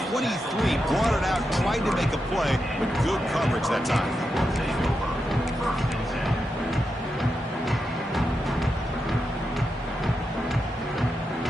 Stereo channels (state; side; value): normal; both; correlation 0.87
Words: 23, brought it out, tried to make a play, but good coverage that time.